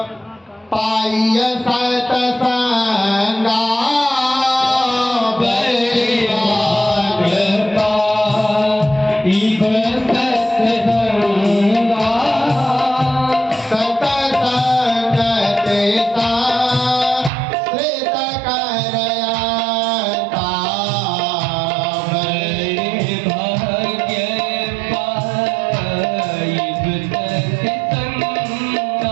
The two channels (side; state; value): left; drops out; at 17.3 s